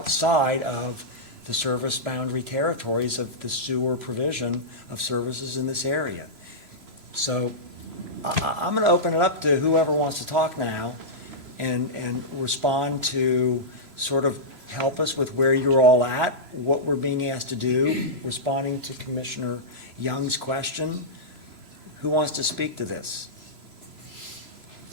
of the service boundary territories of the sewer provision of services in this area. So I'm going to open it up to whoever wants to talk now and respond to sort of help us with where you're all at, what we're being asked to do, responding to Commissioner Young's question. Who wants to speak to this?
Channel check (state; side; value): late; left; 3.0 ms